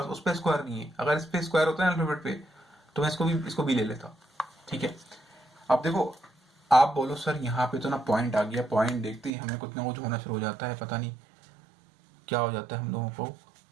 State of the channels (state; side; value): drops out; left; at 9.3 s